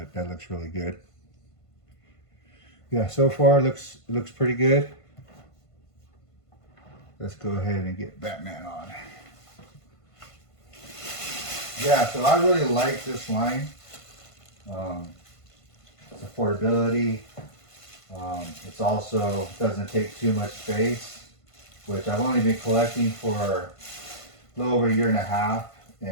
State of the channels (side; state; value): right; late; 1.5 ms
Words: that looks really good. Yeah, so far looks pretty good. Let's go ahead and get Batman on. Yeah, so I really like this line. It's affordability. It's also doesn't take too much space, which I've only been collecting for a little over a year and a half,